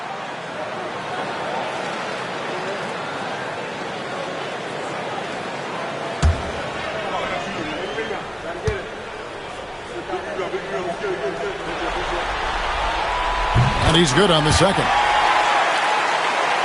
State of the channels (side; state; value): both; identical; correlation 1.00